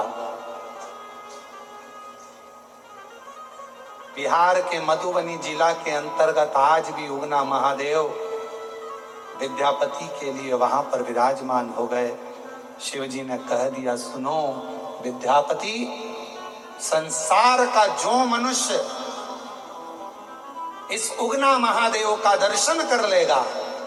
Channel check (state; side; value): identical; both; correlation 1.00